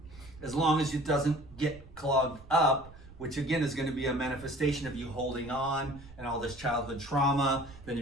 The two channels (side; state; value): right; noise; rumble, 19 dB below the sound